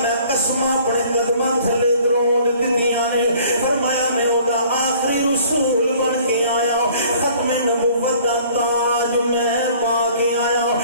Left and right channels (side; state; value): both; inverted; correlation -0.54